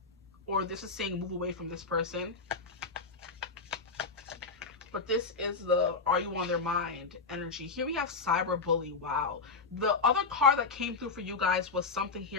Or this is saying move away from this person. But this is the are you on their mind energy. Here we have cyber bully. Wow. The other card that came through for you guys was something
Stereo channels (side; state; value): right; quieter; 4.4 dB